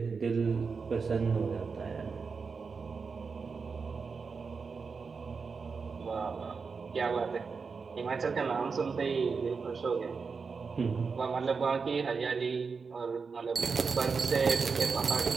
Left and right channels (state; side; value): quieter; left; 5.1 dB